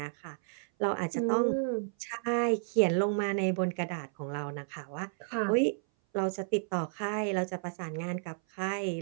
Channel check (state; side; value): silent; left; 57 dB below the other